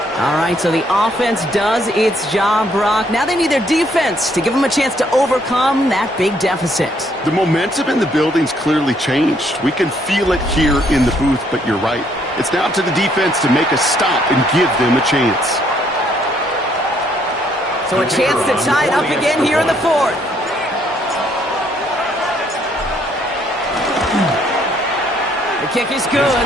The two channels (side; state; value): both; normal; correlation 0.68